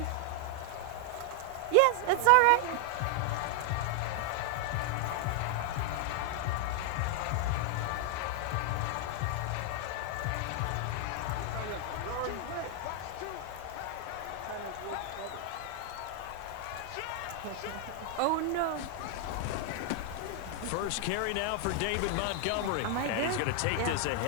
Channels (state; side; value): different; both; correlation 0.00